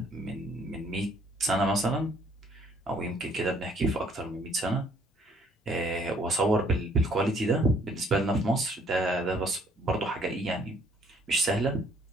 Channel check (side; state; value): both; normal; correlation 0.62